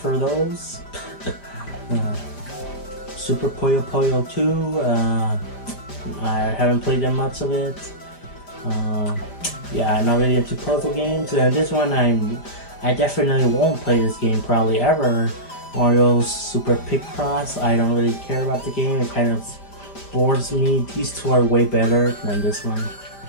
those. Super Puyo Puyo 2, I haven't played that much of it. Yeah, I'm not really into puzzle games. This one I definitely won't play this game probably ever. Mario's Super Picross, I don't really care about the game. It kind of bores me. These two are way better than this one.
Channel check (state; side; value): late; right; 5.0 ms